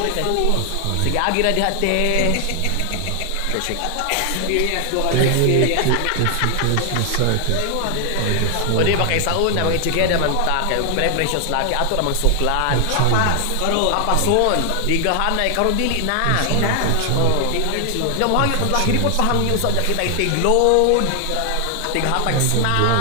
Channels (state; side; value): different; both; correlation 0.00